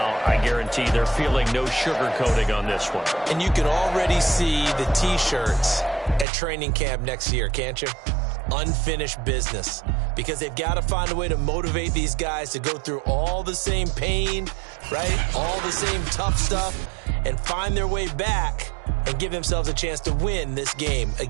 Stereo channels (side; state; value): left; drops out; at 6.2 s